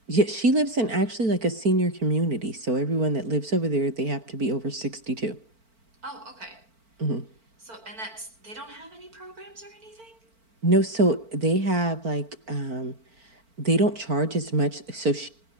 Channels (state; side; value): late; left; 4.5 ms